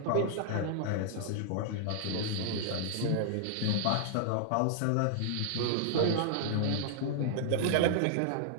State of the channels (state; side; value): different; both; correlation -0.01